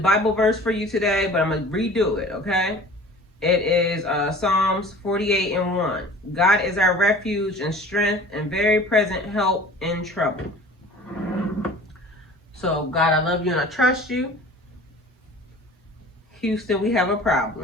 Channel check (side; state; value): both; normal; correlation 0.44